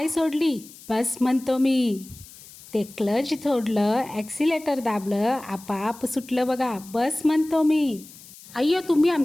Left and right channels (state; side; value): noise; left; hiss, 20 dB below the sound